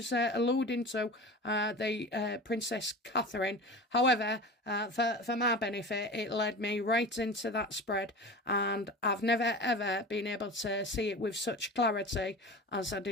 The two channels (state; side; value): normal; both; correlation 0.33